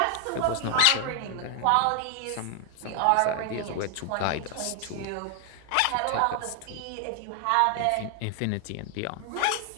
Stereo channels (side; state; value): both; different; correlation 0.00